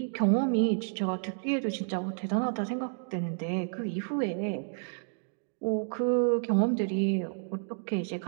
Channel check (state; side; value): silent; left; digital silence